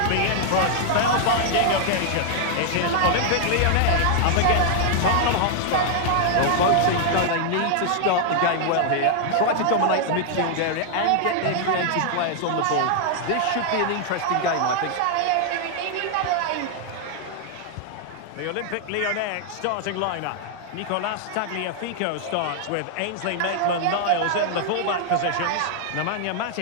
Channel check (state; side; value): different; both; correlation 0.00